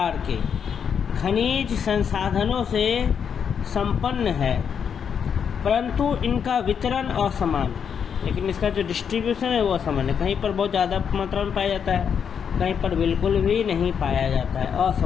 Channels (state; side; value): quieter; right; 7.3 dB